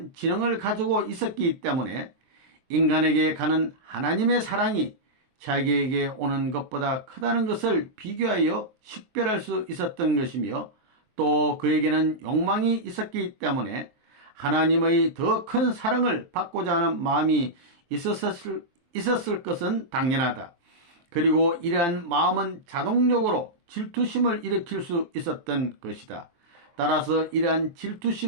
지능을 가지고 있었기 때문에 인간에게 가는 하나님의 사랑이 자기에게 오는 것보다 크다는 것을 비교하여 식별할 수 있었던 것이며, 또 그에게는 욕망이 있었기 때문에 하나님의 더 큰 사랑을 받고자 하는 마음이 있었을 것은 당연하다. 그리고 이러한 마음은 자동적으로 질투심을 일으킬 수 있었던 것이다. 따라서 이러한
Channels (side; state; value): left; late; 23 ms